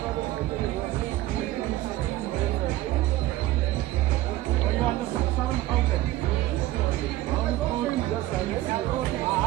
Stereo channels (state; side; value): quieter; left; 15.8 dB